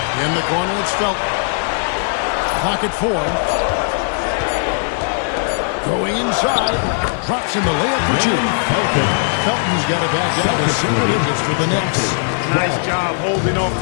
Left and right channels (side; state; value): right; silent; digital silence